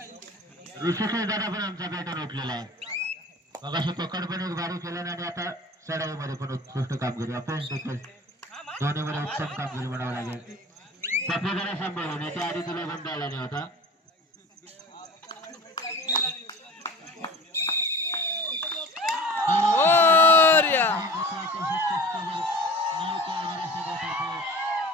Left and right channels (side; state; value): both; normal; correlation 0.39